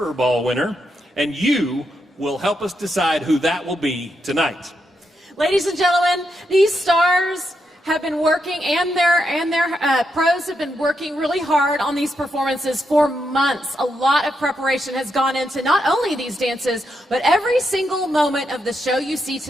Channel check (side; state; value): both; normal; correlation 0.82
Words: ball winner, and you will help us decide who that will be tonight. Ladies and gentlemen, these stars have been working, and their pros have been working really hard on these performances for months. A lot of preparation has gone into not only these dances, but every single moment of the show you see